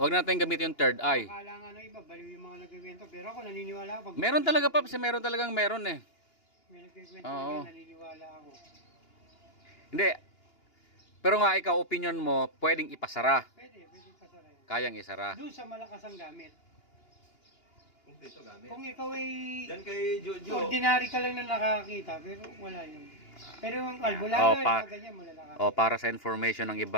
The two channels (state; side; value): late; right; 2.8 ms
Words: na natin gamitin yung third eye. Akala nga ng iba, baliw yung mga nagkikwento. Pero ako naniniwala ako. Meron talaga, Paps, meron talagang meron eh. May nagkikwento Oo. na naniniwala ako. Hindi. Pero nga ikaw, opinion mo, pwedeng ipasara. Pwede pasara yan. Kayang isara. Doon sa malakas ang gamit. Ito gamit. Kung ikaw ay Yan kay Jojo. ordinary ka lang na nakakita, pero wala yun. Pero yung albularyo, pa- yung ganyan, malalakas. O para sa information ng